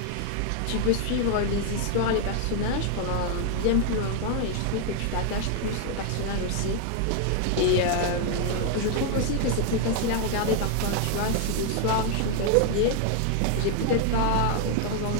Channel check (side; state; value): both; different; correlation 0.00